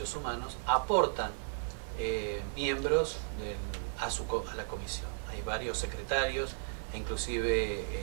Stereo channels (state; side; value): silent; left; 55 dB below the other